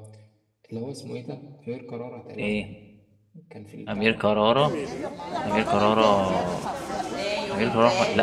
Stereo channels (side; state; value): both; identical; correlation 1.00